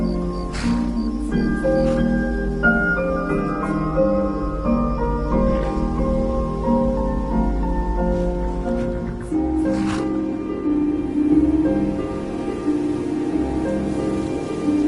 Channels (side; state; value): both; identical; correlation 1.00